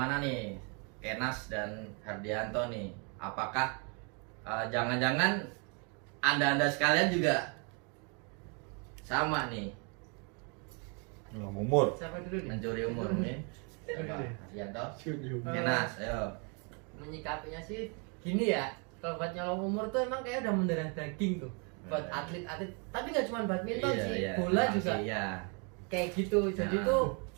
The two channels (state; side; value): quieter; left; 35.4 dB